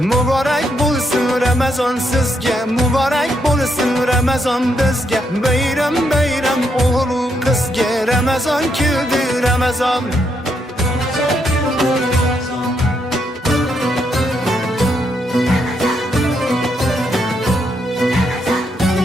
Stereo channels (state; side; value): normal; both; correlation 0.78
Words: bo'lsin Ramazon sizga, muborak bo'lsin Ramazon bizga. Bayram bayram o'g'il qizga, Ramazon keldi, Ramazon.